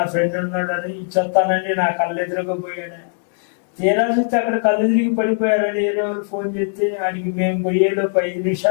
ఫ్రెండ్ ఉన్నాడు అని చెప్తానని నా కళ్ళు ఎదురుగా పోయాడు. తీరా చూస్తే అక్కడ కళ్ళు తిరిగి పడిపోయారని వేరే వాళ్ళు ఫోన్ చేస్తే ఆడికి మేము పోయేలోపు 5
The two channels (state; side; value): silent; right; 60 dB below the other